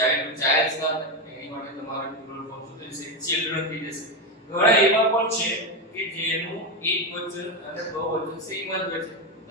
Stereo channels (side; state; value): both; normal; correlation 0.12